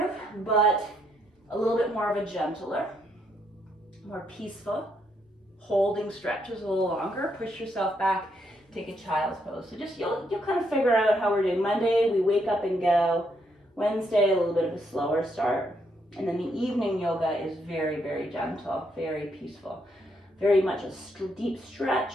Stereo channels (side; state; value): both; normal; correlation 0.75